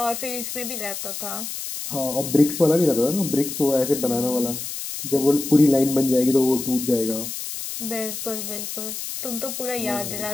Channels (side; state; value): left; noise; hiss, 7 dB below the sound